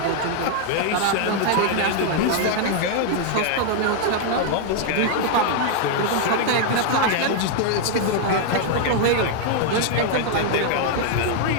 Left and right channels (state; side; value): different; both; correlation 0.00